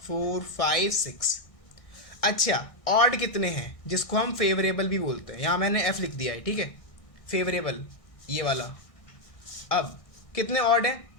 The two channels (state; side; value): late; right; 1.6 ms